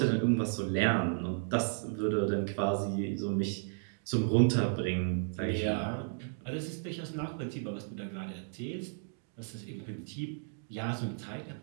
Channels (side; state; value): left; silent; digital silence